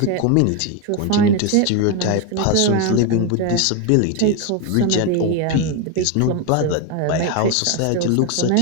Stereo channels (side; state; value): both; different; correlation 0.02